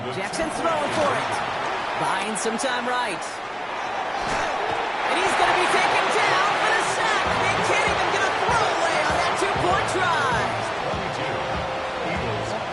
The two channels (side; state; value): both; identical; correlation 1.00